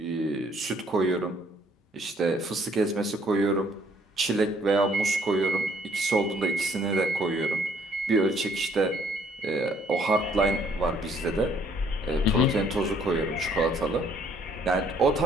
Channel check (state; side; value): normal; both; correlation 0.63